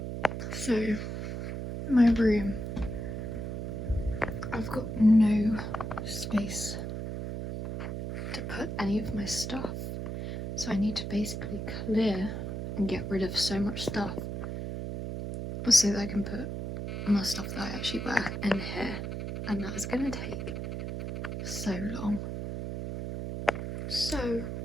So, my room. I've got no space to put any of my stuff. So I need to basically clear and get rid of so much stuff so that I can put my stuff that I actually wear in here. And that is going to take so long. So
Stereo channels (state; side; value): noise; right; hum, 4 dB below the sound